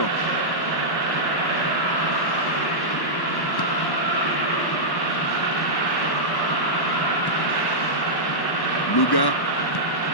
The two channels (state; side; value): late; right; 1.1 ms